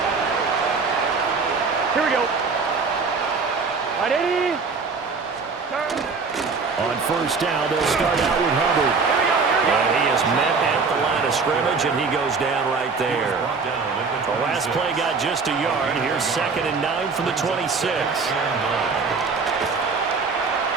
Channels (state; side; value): quieter; left; 4.7 dB